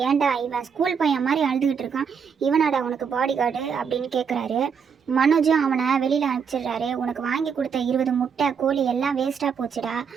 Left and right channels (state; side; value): quieter; left; 6.6 dB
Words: ஏன்டா இவன் ஸ்கூல் பையன் மாதிரி அழுதுகிட்டு இருக்கான், இவனாடா உனக்கு பாடி கார்டு அப்படின்னு கேட்குறாரு. மனோஜும் அவனை வெளியில் அனுப்பிச்சிடுறாரு. உனக்கு வாங்கி கொடுத்த 20 முட்டை கோழி எல்லாம் வேஸ்ட்டாக போச்சுடா